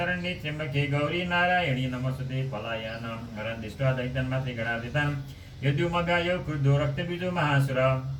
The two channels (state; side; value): identical; both; correlation 1.00